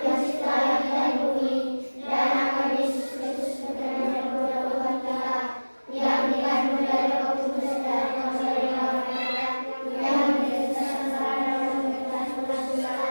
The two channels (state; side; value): inverted; both; correlation -1.00